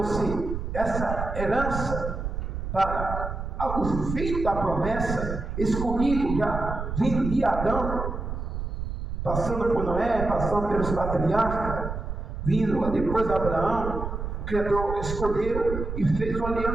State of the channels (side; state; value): right; noise; rumble, 5 dB below the sound